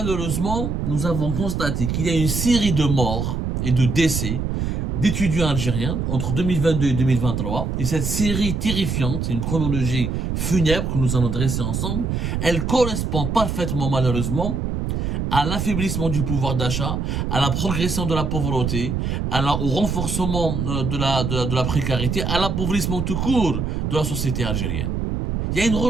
nous avons constaté qu'il y a une série de morts et de décès d'étudiants algériens entre 2022 et 2023. Et cette série terrifiante, c'est une chronologie funèbre que nous allons dresser ensemble, elle correspond parfaitement, malheureusement, à l'affaiblissement du pouvoir d'achat, à la progression de la pauvreté, au renforcement de la précarité, à l'appauvrissement tout court de la société algérienne. Il y a une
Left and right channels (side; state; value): right; noise; rumble, 1 dB below the sound